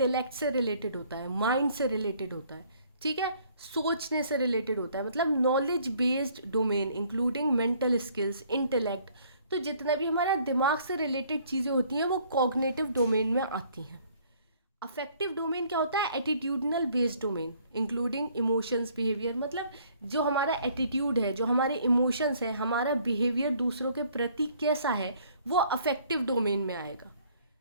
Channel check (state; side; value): inverted; both; correlation -0.60